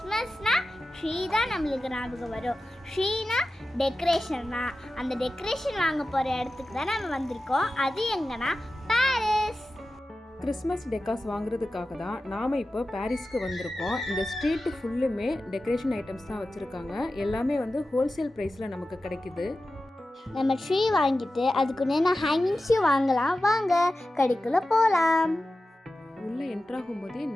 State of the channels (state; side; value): normal; both; correlation 0.94